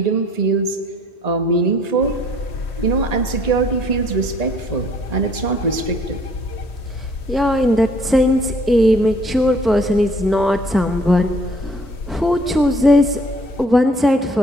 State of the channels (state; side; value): normal; both; correlation 0.59